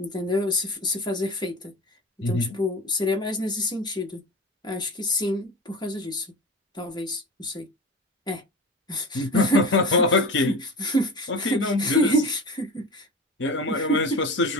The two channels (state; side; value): normal; both; correlation 0.31